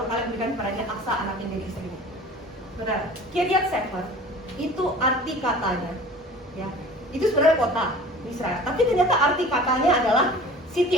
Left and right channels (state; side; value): normal; both; correlation 0.43